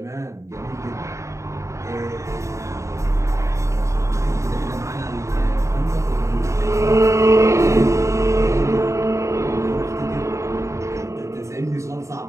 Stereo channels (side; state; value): left; late; 0.14 ms